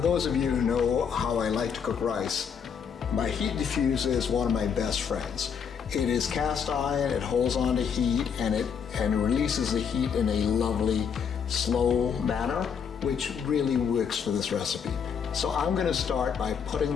of you who know how I like to cook rice, my heat diffuser is one of my best friends. It is cast iron, it holds on to heat, and it releases the heat in a lovely, slow manner, which really works for this recipe. So I'm going to start by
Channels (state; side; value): quieter; right; 7.0 dB